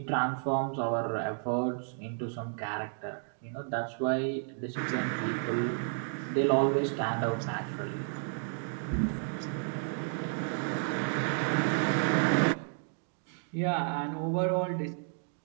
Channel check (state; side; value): silent; left; 56 dB below the other